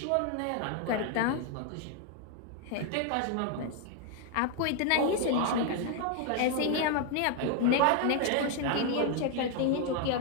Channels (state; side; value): different; both; correlation 0.00